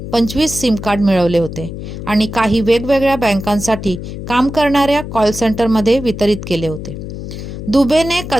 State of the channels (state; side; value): noise; left; hum, 9 dB below the sound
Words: 25 सिम कार्ड मिळवले होते आणि काही वेगवेगळ्या बँकांसाठी काम करणाऱ्या कॉल सेंटरमध्ये वितरित केले होते। दुबेने